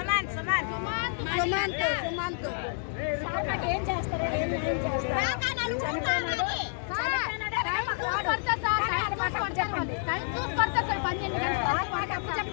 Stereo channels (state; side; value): silent; right; digital silence